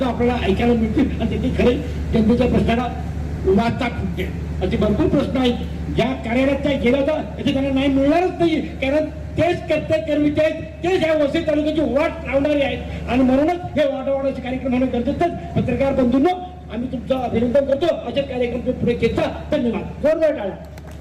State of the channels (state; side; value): identical; both; correlation 1.00